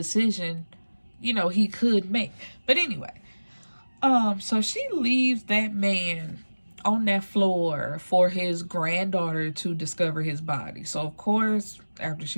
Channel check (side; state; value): both; inverted; correlation -1.00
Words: you know, he could make. But anyway, so she leaves that man on that floor for his granddaughter to discover his body. So of course, after